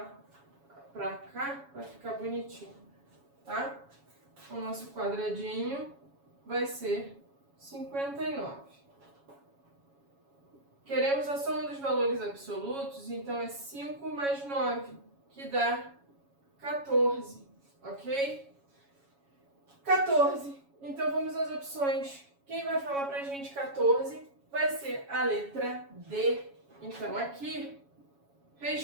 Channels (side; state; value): left; late; 7.2 ms